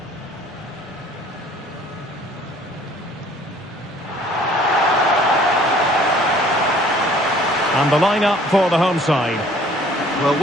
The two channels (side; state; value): both; normal; correlation 0.55